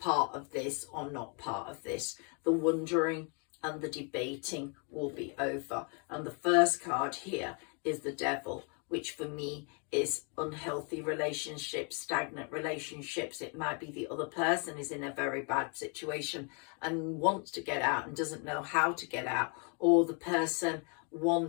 of this or not part of this. The wondering and the debating will be over. And the first card here is the Devil, which for me is unhealthy relationships, stagnant relationships. It might be the other person is in a very bad situation and wants to get out and doesn't know how to get out, or the person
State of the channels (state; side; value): quieter; right; 36.7 dB